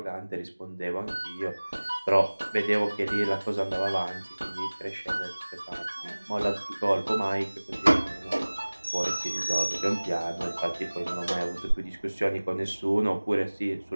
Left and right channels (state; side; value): inverted; both; correlation -1.00